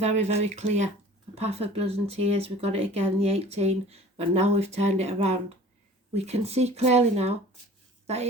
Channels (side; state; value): both; normal; correlation 0.45